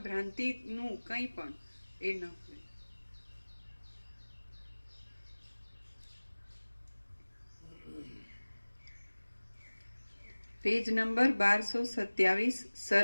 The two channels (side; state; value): both; inverted; correlation -1.00